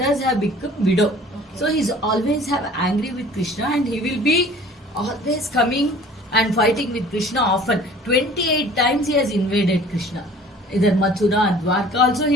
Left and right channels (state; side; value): normal; both; correlation 0.49